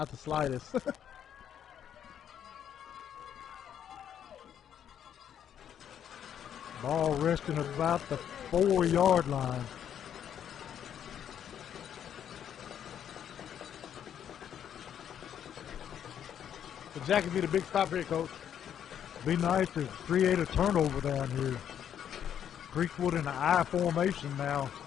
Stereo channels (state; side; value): quieter; right; 9.3 dB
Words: the slightest. Ball resting at about the 4-yard line. The Jackets need a big stop here, Coach. Be nice to create a turnover down here. Creekwood in the I formation now.